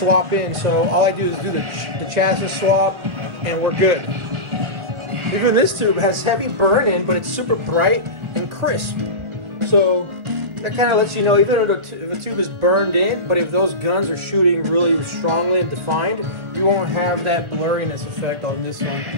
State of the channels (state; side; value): late; left; 1.4 ms